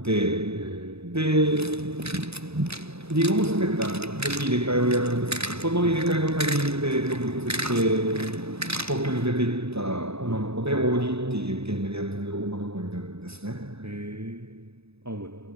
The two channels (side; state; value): left; late; 0.79 ms